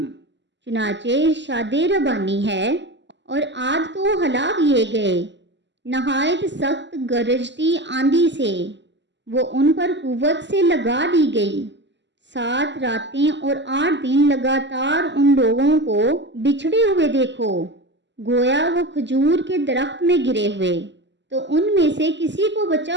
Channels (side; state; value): left; late; 0.52 ms